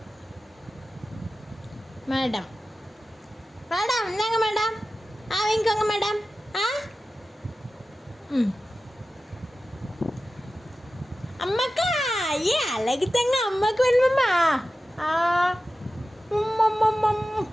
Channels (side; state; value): both; normal; correlation 0.94